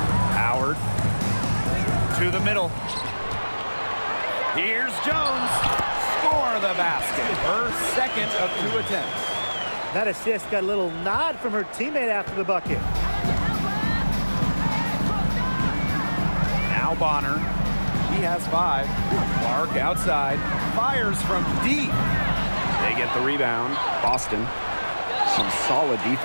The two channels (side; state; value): both; inverted; correlation -1.00